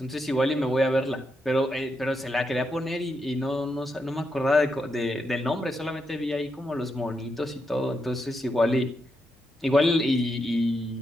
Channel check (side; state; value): both; normal; correlation 0.83